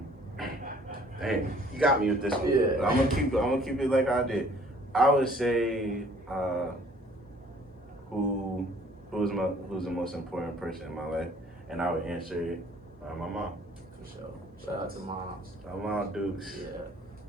Dang, you got me with this one. Yeah. But I'm gonna keep it like I did. I would say, who who's the most important person in my life, and I would answer it my mom. For sure. Shout out to moms. My mom Dukes. Yeah,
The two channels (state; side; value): normal; both; correlation 0.56